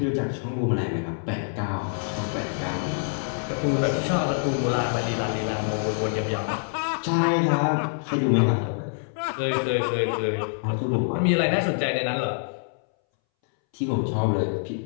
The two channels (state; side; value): silent; right; 61 dB below the other